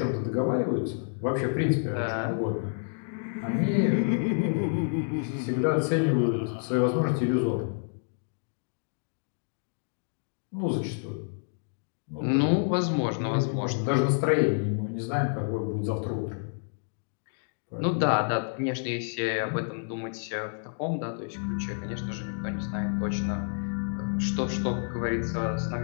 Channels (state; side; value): silent; right; digital silence